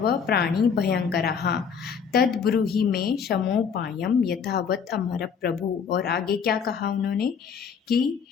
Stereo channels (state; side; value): quieter; right; 6.6 dB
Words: प्राणी भयंकराः तद्ब्रूहि मे शमोपायम यथावत् अमर प्रभु। और आगे क्या कहा उन्होंने कि